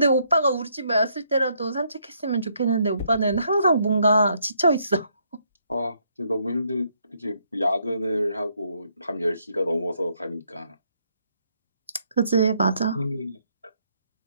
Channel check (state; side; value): inverted; both; correlation -0.72